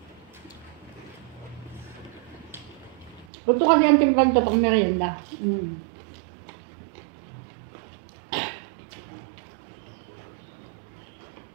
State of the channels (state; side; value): drops out; left; at 3.2 s